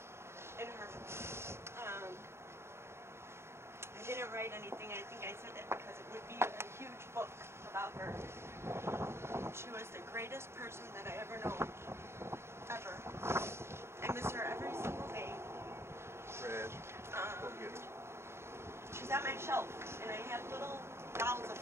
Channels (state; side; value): late; left; 0.12 ms